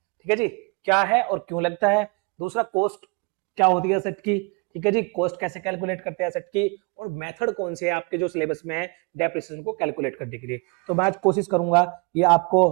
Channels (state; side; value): quieter; left; 31.7 dB